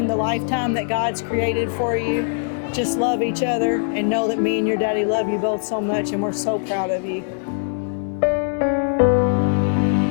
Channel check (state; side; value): silent; right; digital silence